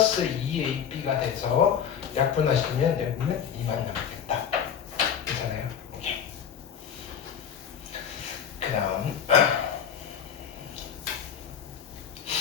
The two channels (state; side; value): quieter; right; 8.1 dB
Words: 2ab가 돼서 약분하시면 여기는 2만 남겠다. 괜찮아요? 그 다음